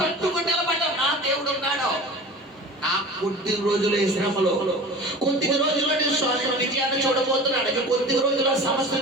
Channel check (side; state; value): both; normal; correlation 0.37